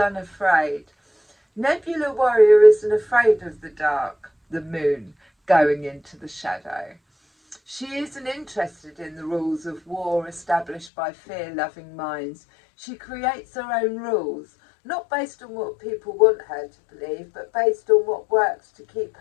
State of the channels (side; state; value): right; drops out; at 10.9 s